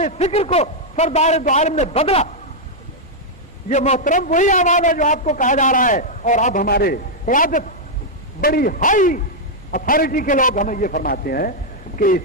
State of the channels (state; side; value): normal; both; correlation -0.04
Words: فکر کو سردار دو عالم نے بدلا. یہ محترم وہی آواز ہے جو آپ کو کہا جا رہا ہے. اور اب ہمارے قیادت بڑی ہائی اتھارٹی کے لوگ ہمیں یہ فرماتے ہیں کہ